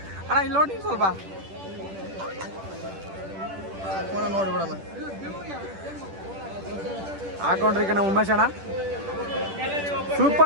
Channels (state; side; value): late; left; 10 ms